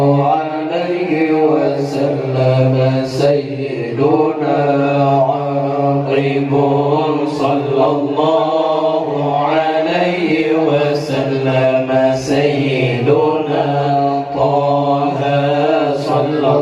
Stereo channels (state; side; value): identical; both; correlation 1.00